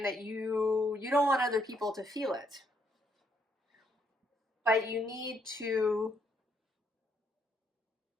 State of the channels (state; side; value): normal; both; correlation 0.72